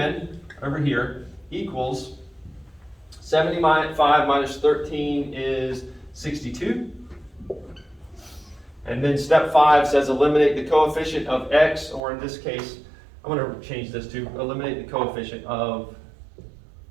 over here equals 75 minus 13 is 62. And then step 5 says eliminate the coefficient of x, or in this case, I'm going to change this to eliminate the coefficient of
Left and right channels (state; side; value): drops out; left; at 12.0 s